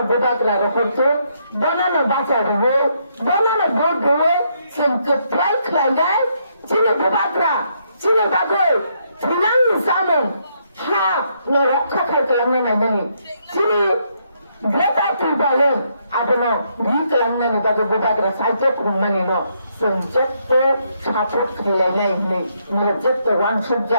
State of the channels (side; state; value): both; inverted; correlation -0.74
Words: বুবাকরা রহতো বনানো বাঁচা দেবো বনানো ভোট দেবো जोंखौ फ्राय खालायनाय 지네 बुबाकरा 지네 बागै थैनांनि जामोन हा न रक्षा खालामनानै नायनानै 지네 ग्रेटा ट्रिबालेन आबोनो रि खालामनानै बागै बुबाकरा साइजो खुंनानै न जों जेबो सापर्ट खालायनाय नै नों जेबो वानसुब